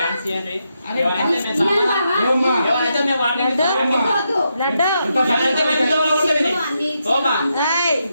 ఇవ్వండి. అరే, ఎవరైతే మేము ఇయ్యండి సమాధానం- బావా. ఓమ్మా. ఎవరైతే మేము వాడిని లడ్డు. వద్దు. లడ్డు ఎవరైతే మేము ఇంట్లో వాళ్ళు కొట్టేది. అన్ని ఓమా. ఏయ్,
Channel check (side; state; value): both; inverted; correlation -0.83